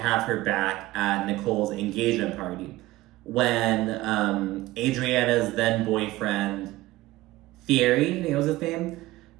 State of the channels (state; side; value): quieter; left; 17.8 dB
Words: her back at Nicole's engagement party. When Adriana's then boyfriend, Thierry, I think it was his name,